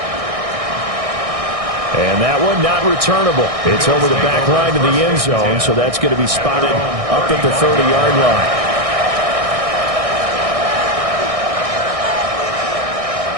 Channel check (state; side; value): late; left; 1.6 ms